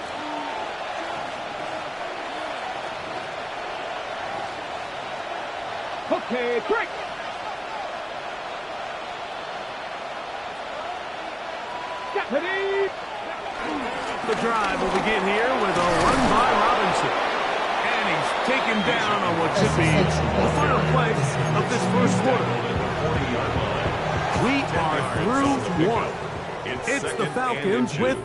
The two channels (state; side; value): identical; both; correlation 1.00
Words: Okay, break. Ready. The drive will begin here with a run by Robinson. And he's taken down on what should be the final play of this first quarter. We are through one. It's the Falcons with